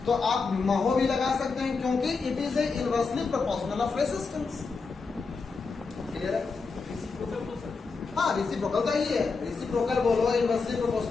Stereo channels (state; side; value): quieter; right; 4.5 dB